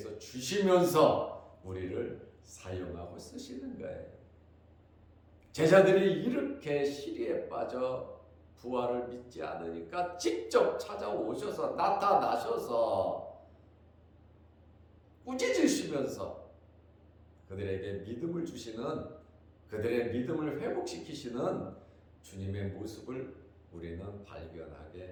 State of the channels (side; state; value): both; identical; correlation 1.00